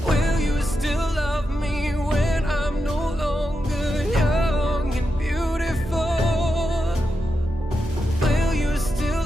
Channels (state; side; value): normal; both; correlation 0.87